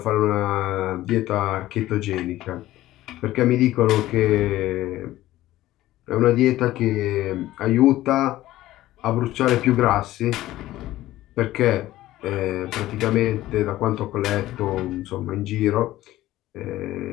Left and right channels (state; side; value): quieter; right; 15.5 dB